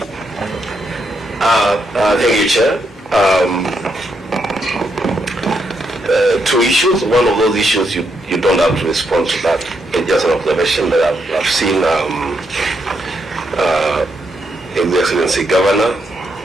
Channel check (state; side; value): normal; both; correlation 0.79